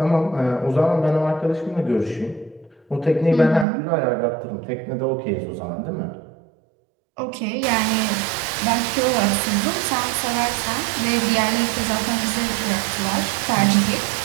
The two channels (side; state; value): left; drops out; at 3.7 s